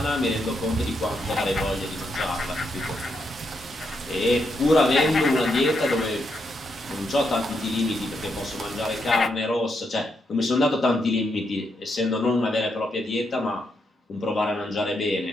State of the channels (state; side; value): normal; both; correlation 0.80